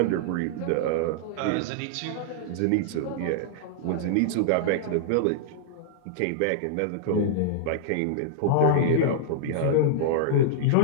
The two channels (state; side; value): different; both; correlation -0.01